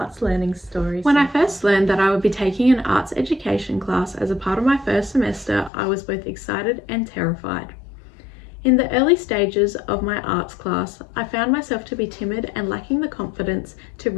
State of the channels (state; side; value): drops out; right; at 5.7 s